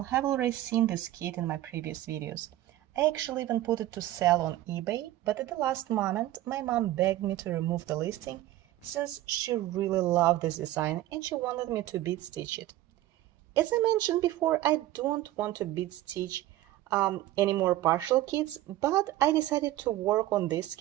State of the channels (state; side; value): quieter; left; 14.9 dB